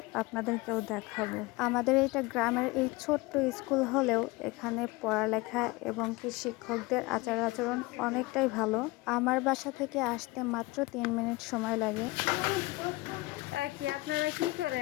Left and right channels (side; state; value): right; quieter; 22.0 dB